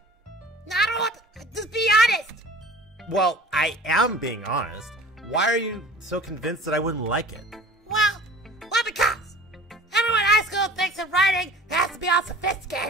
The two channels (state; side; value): normal; both; correlation 0.43